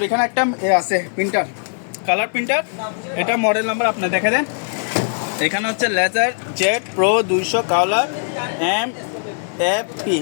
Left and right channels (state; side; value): silent; right; digital silence